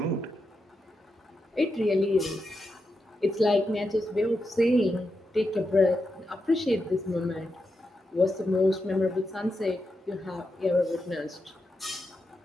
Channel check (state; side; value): normal; both; correlation 0.86